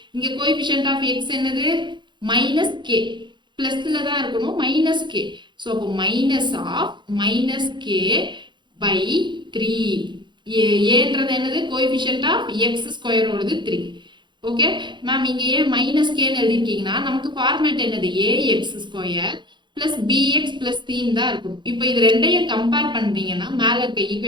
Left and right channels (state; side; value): late; left; 0.22 ms